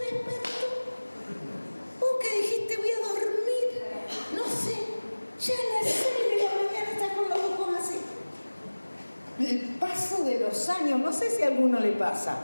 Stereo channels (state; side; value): inverted; both; correlation -1.00